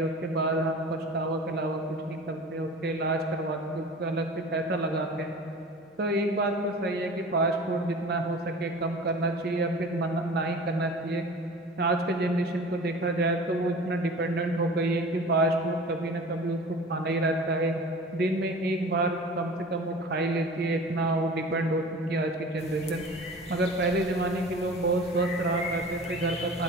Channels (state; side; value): normal; both; correlation 0.39